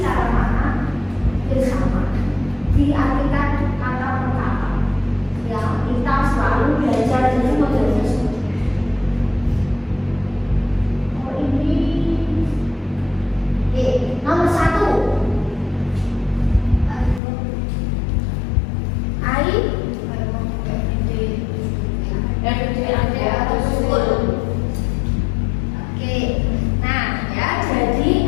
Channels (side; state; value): right; drops out; at 17.2 s